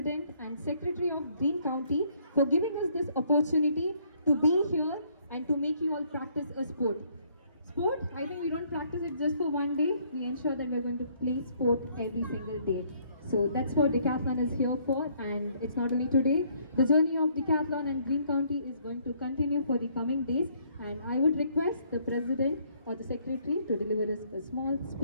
and Secretary of Green County for giving us this opportunity to be here and to make you all practice a sport. Sport, I think we don't practice it just for one day. We ensure that we're going to play sport every single day. So that's what Decathlon is here for, and it's not only today. The journey of Decathlon and Green County is going to continue for the coming days, and I would request the President or the Secretary to deliver us a small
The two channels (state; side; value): inverted; both; correlation -0.65